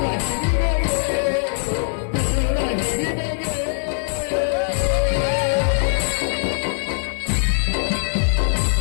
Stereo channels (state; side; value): silent; right; digital silence